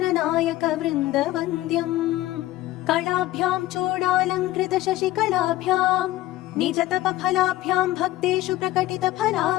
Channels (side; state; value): right; quieter; 16.1 dB